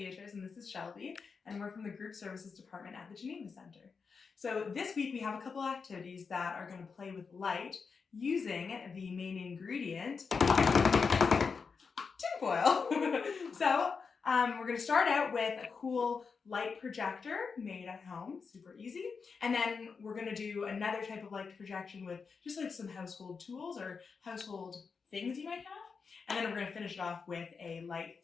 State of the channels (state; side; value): quieter; right; 5.3 dB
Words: and this is Shelby, and we're from the Group Services Department at the Geneva Center. So this week we have a couple activities that are going to play with light using the main ingredient, tinfoil. So we're going to start out with a cool light projector made at home, super easy. And then we're going to do another type of light projection with just like some household tools or household things you might have. And then we're going to finish it off with a light